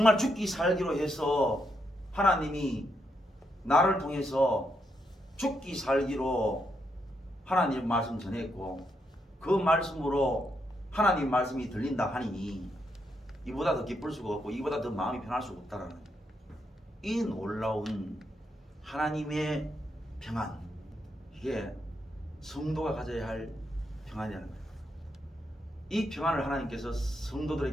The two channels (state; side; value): normal; both; correlation 0.80